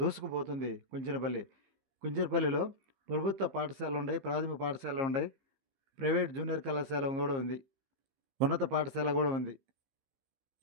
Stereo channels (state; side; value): late; left; 15 ms